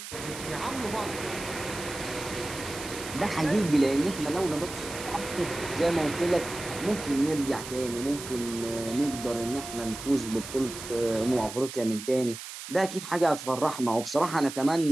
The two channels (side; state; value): right; noise; hiss, 10 dB below the sound